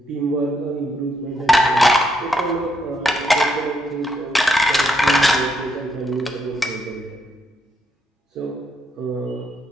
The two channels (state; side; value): normal; both; correlation 0.76